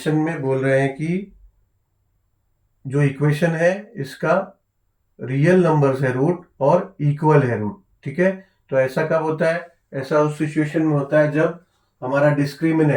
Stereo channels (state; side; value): identical; both; correlation 1.00